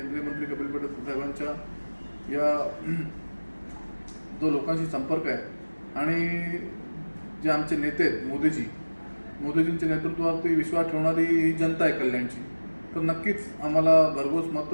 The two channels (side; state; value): both; inverted; correlation -1.00